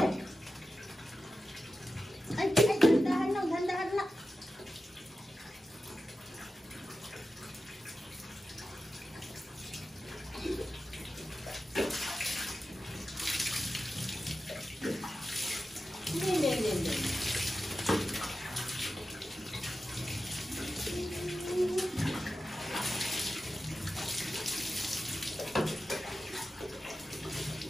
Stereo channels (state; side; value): normal; both; correlation 0.92